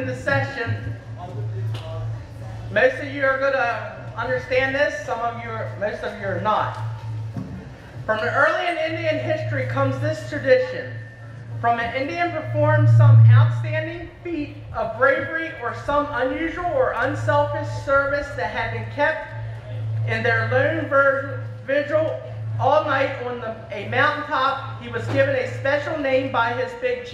session. Most of you are going to understand this. Most of you are not. From the early in Indian history comes this tradition. From an Indian performed some outstanding feat of bravery or some unusual or unselfish service that had been kept in their lone vigil all night on a mountaintop, he was given a special name by his big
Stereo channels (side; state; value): both; identical; correlation 1.00